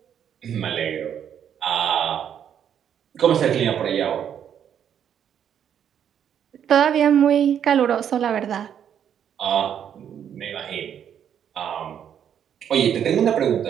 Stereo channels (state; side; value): quieter; left; 9.0 dB